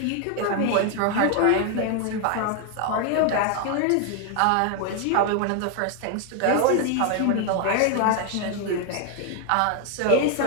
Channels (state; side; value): different; both; correlation 0.00